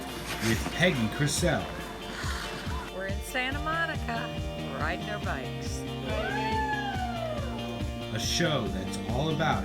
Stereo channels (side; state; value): both; identical; correlation 1.00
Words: with Peggy Crisell. We're in Santa Monica, riding our bikes. A show that's all about